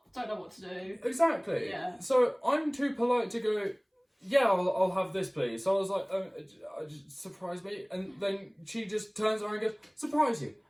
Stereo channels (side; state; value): both; identical; correlation 1.00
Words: don't know what to do. Exactly. Yeah. So I'm too polite to go, yeah, I'll have this, please. So I was like, surprise me. And then she just turns around and goes, surprise you.